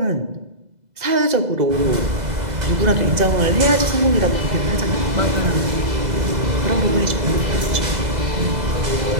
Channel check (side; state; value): left; late; 2.0 ms